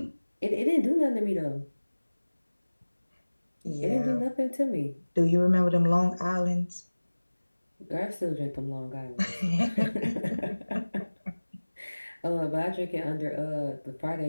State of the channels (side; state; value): both; inverted; correlation -1.00